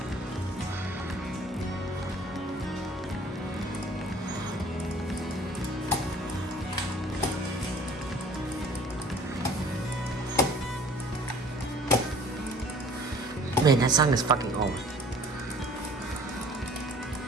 Man, that song is fucking old.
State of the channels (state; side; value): normal; both; correlation 0.50